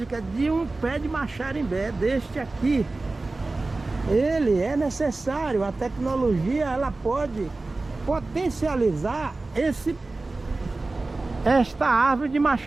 de um pé de Maxarimbé deste aqui. Ele é necessário, a tecnologia ela pode potencializar esta árvore de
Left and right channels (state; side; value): quieter; left; 3.3 dB